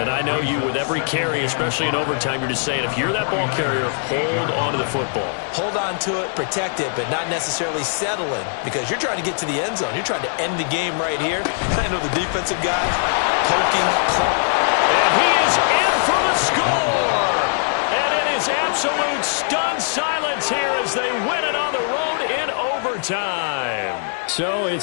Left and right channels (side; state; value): right; silent; digital silence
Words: I know you, with every carry, especially in overtime, you're just saying, if you're that ball carrier, hold on to the football. Hold on to it, protect it, but not necessarily settling, because you're trying to get to the end zone. You're trying to end the game right here. I know the defensive guys poking, and he is in for the score. And it is absolute stunned silence here as they win it on the road in overtime. So